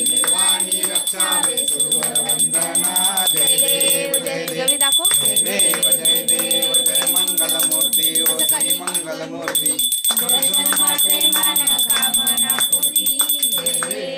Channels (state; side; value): identical; both; correlation 1.00